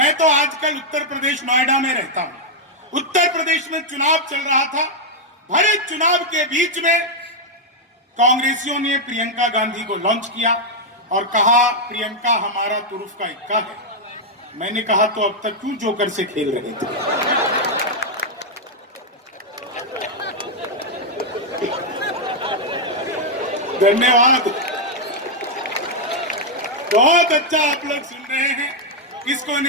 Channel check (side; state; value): both; normal; correlation -0.02